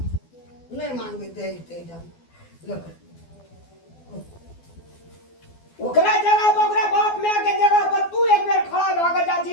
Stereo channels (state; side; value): late; right; 12 ms